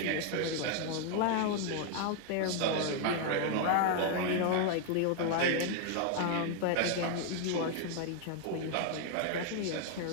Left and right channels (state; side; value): different; both; correlation 0.00